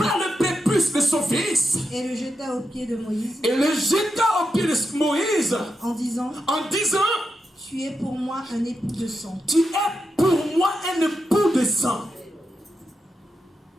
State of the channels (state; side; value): normal; both; correlation 0.86